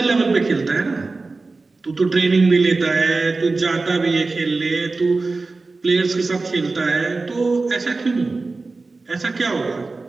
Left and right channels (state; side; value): quieter; left; 3.7 dB